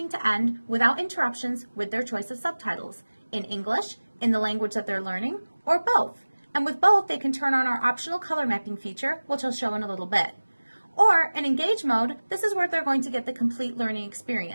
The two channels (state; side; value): inverted; both; correlation -1.00